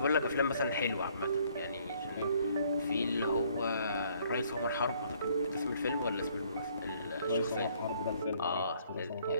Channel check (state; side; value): inverted; both; correlation -0.63